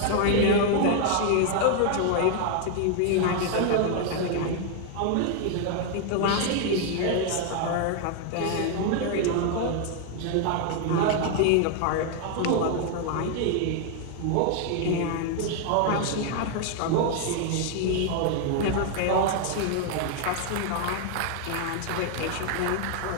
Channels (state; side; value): different; both; correlation 0.00